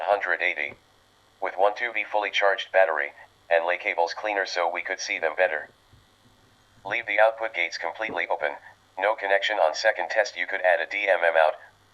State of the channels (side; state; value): both; identical; correlation 1.00